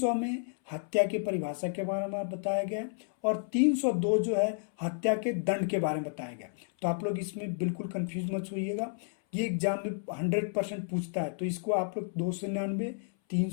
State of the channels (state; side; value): silent; right; 57 dB below the other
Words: में हत्या की परिभाषा के बारे में बताया गया और 302 जो है हत्या के दंड के बारे में बताया गया। तो आप लोग इसमें बिल्कुल कंफ्यूज मत होइएगा, ये एग्जाम में 100% पूछता है। तो इसको आप लोग 299,